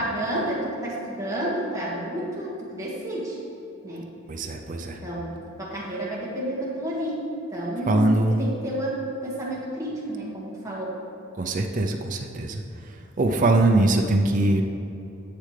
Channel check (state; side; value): normal; both; correlation 0.60